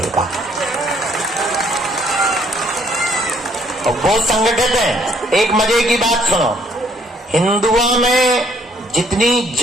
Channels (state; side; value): normal; both; correlation 0.65